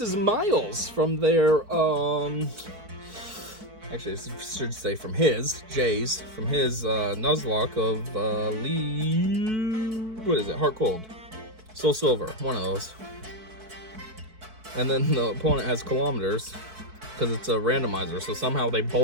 is Miles from their, actually, I should say from his, Jay's, from his, Nuzlocke of, what is it, Heart Cold. Soul Silver, one of those. And then the opponent has kilometers because it's a randomizer. So somehow they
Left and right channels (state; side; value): late; left; 4.6 ms